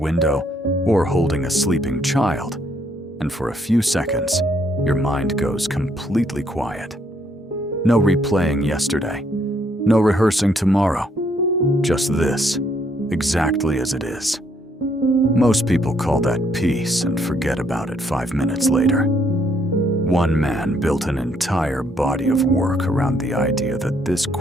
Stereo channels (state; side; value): normal; both; correlation 0.70